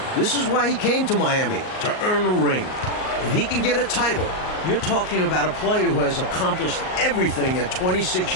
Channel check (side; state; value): right; late; 38 ms